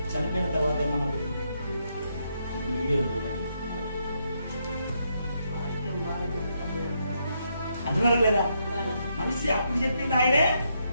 చనిపోయిన తర్వాత ఏమన్నా వీడియో చూడండి, అంటున్నారా లేదా? మనిషి అప్పుడు చెప్పింది ఆయనే,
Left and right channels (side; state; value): both; inverted; correlation -0.78